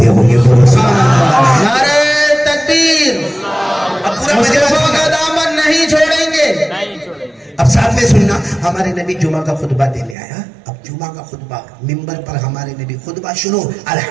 ہوں گے. نعرہ تکبیر. اب پورا مجمع کا دامن نہیں چھوڑیں گے. اب ساتھ میں سننا, ہمارے نبی جمعہ کا خطبہ دینے آیا. اب جمعہ کا خطبہ ممبر پر ہمارے نبی خطبہ شروع,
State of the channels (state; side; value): drops out; left; at 10.2 s